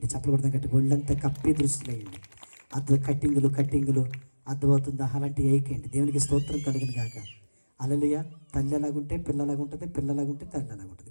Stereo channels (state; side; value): inverted; both; correlation -1.00